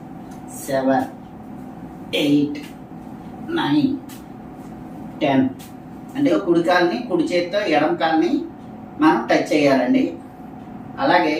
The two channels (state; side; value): identical; both; correlation 1.00